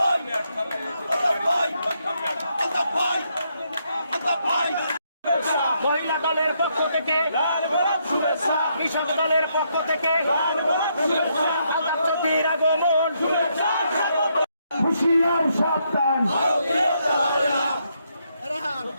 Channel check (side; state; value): both; inverted; correlation -0.76